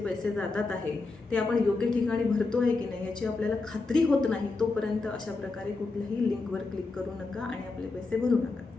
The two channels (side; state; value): right; quieter; 3.7 dB